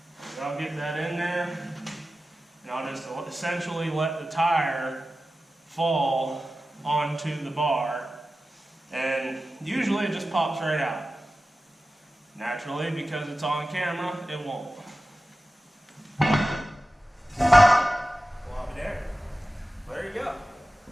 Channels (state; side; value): normal; both; correlation 0.95